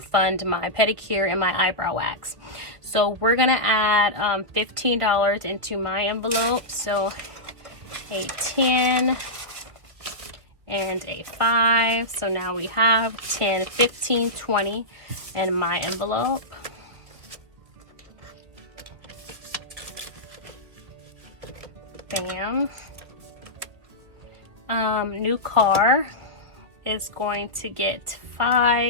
my pedicure and my eyebrow wax. So we're gonna add $15 into my envelope. So a 10 and a 5. So now we have 10, 15, 20 in my envelope. Bam. New car is going to get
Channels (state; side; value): late; left; 2.0 ms